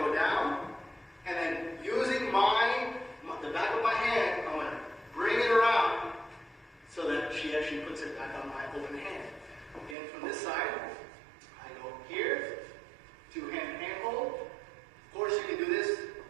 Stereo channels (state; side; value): drops out; left; at 10.0 s